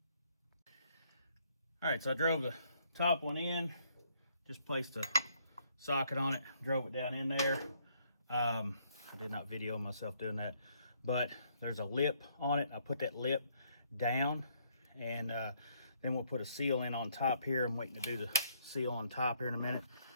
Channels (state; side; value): inverted; both; correlation -0.69